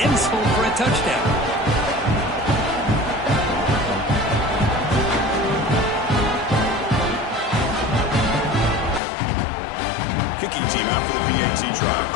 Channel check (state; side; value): drops out; right; at 9.0 s